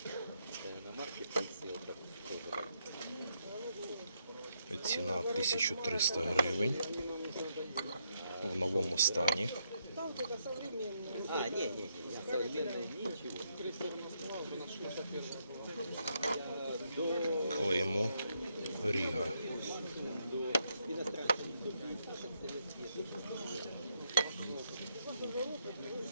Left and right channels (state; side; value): inverted; both; correlation -0.77